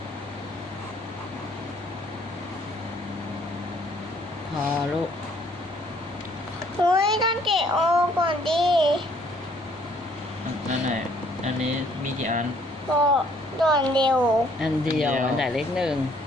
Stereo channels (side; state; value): both; normal; correlation 0.62